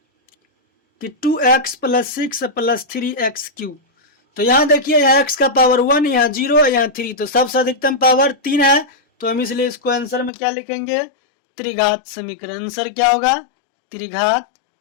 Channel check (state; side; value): drops out; right; at 10.3 s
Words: कि 2x प्लस 6 प्लस 3x³। तो यहाँ देखिए, यहाँ x का पावर 1, यहाँ 0, यहाँ 3, तो सबसे अधिकतम पावर 3 है, तो हम इसलिए इसको आंसर में क्या लिखेंगे? त्रिघात समीकरण। आंसर क्या होगा? त्रिघात